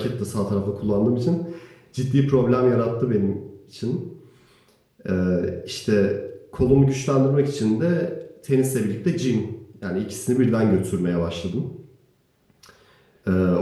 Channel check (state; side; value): identical; both; correlation 1.00